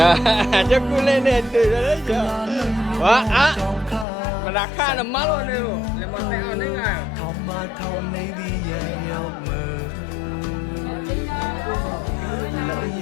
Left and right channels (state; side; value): drops out; right; at 4.0 s